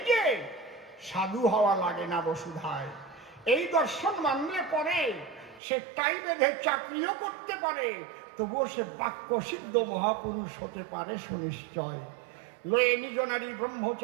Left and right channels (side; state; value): left; drops out; at 5.6 s